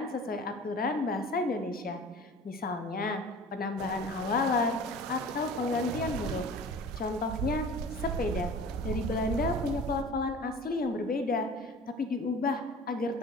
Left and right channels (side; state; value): both; normal; correlation 0.41